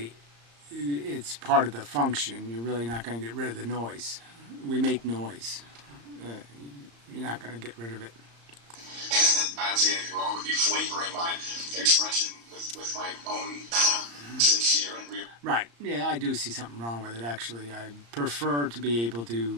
it's part of the function. You're really not going to get rid of the noise. We make noise. You're not going to get rid of it. I don't see anything wrong with me flavoring my expression with my own sincere and real. Right. Yeah, I do see something wrong with it, actually. I prefer to be able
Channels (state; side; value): late; left; 35 ms